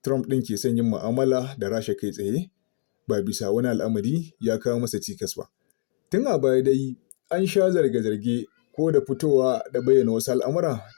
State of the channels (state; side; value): silent; right; digital silence